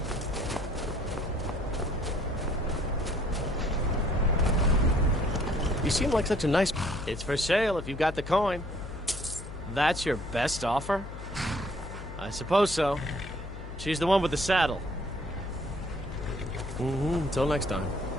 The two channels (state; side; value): noise; left; hum, 10 dB below the sound